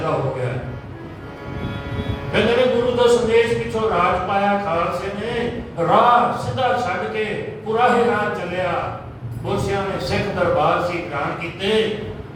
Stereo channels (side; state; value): both; identical; correlation 1.00